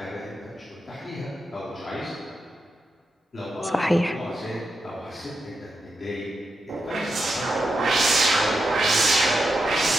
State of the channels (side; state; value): both; normal; correlation 0.86